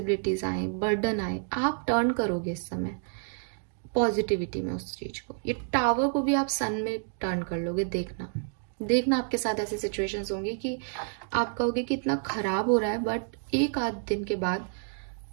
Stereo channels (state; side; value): silent; left; digital silence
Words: आए, बर्डन आए, आप टर्न करोगे इस समय पॉजिटिविटी में उस चीज को। ये टावर को भी आप सन में टर्न कर लोगे। देखना आपके साथ ऐसी सिचुएशंस होंगी कि आप कहोगे कि इतना खराब हो रहा है, बट एक आध दिन के बाद